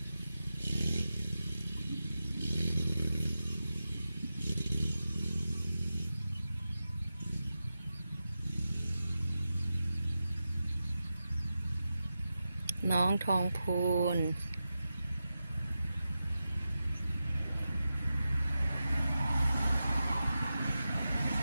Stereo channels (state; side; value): inverted; both; correlation -0.91